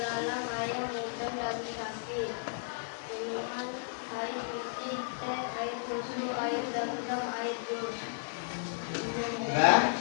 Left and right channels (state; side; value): silent; right; digital silence